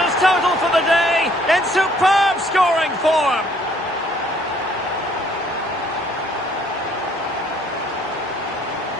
his total for the day in superb scoring form.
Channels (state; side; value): normal; both; correlation 0.61